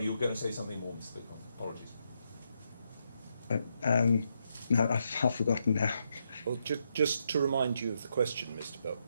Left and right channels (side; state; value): both; inverted; correlation -0.80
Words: you were going to say something more, Mr. Bitcon. Apologies. No, I've forgotten now. Well, just to remind you of the question, Mr.